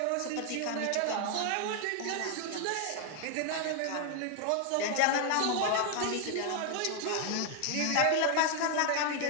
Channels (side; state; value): both; different; correlation 0.00